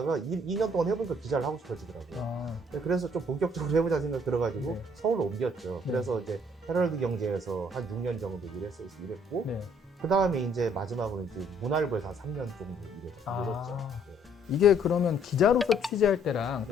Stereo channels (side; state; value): both; normal; correlation 0.63